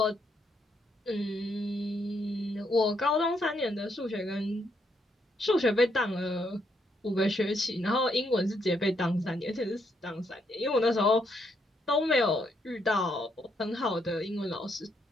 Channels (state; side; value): normal; both; correlation 0.76